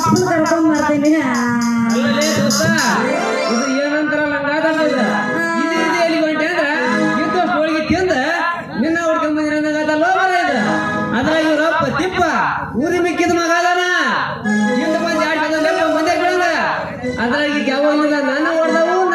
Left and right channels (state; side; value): identical; both; correlation 1.00